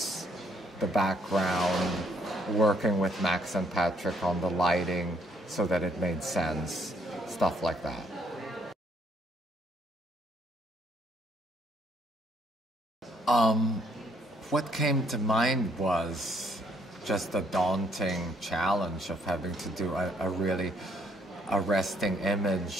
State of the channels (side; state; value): both; normal; correlation 0.67